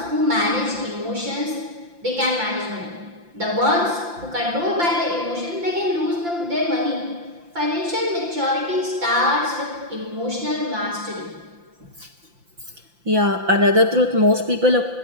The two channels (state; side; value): late; left; 5.8 ms